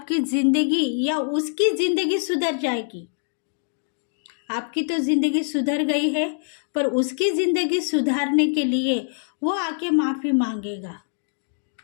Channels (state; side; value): silent; right; digital silence